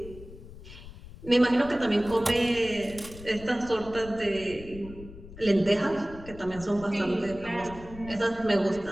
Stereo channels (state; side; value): noise; left; rumble, 16 dB below the sound